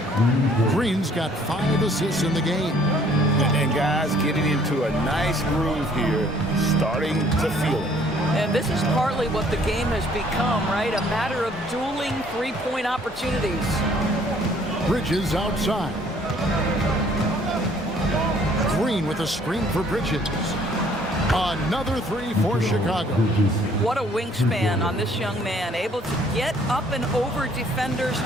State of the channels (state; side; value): normal; both; correlation 0.60